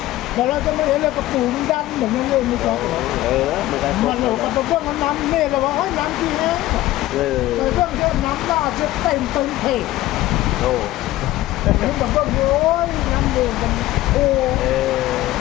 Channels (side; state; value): right; quieter; 16.0 dB